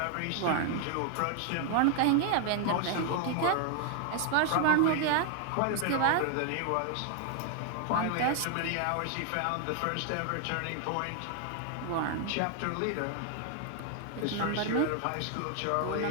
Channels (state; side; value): different; both; correlation 0.00